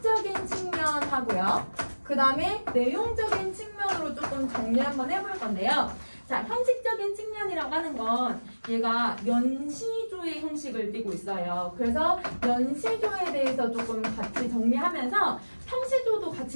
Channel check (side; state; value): both; inverted; correlation -1.00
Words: 측면하고요. 그 다음에 내용적인 측면으로 조금 정리 한번 해볼 건데요. 자, 형식적인 측면이라고 하는 건 얘가 연시조의 형식을 띠고 있어요. 그래서 연시조에 대해서 조금 같이 정리하면서 평시조도